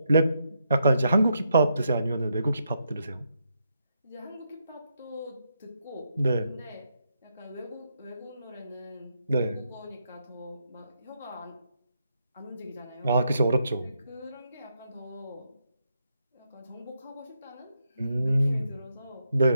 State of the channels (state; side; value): inverted; both; correlation -0.80